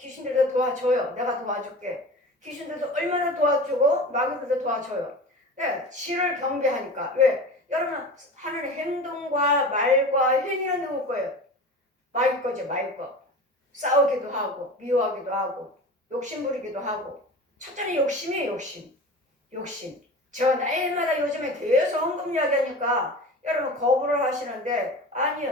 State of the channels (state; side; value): normal; both; correlation 0.34